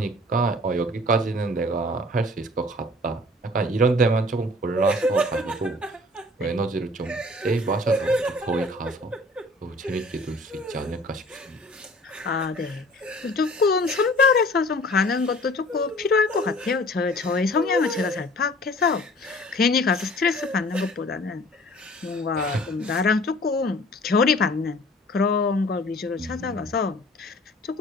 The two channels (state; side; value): normal; both; correlation 0.49